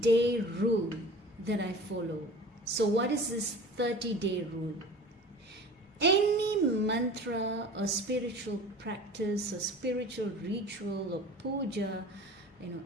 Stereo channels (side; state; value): both; normal; correlation 0.41